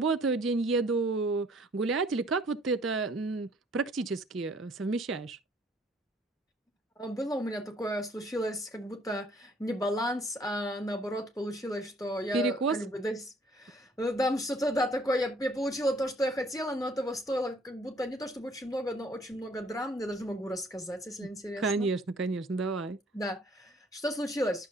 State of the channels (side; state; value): both; normal; correlation 0.59